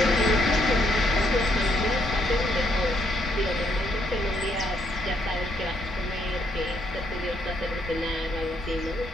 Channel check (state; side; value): normal; both; correlation 0.73